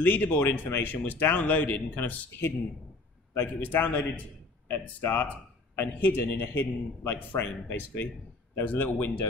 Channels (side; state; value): right; quieter; 3.2 dB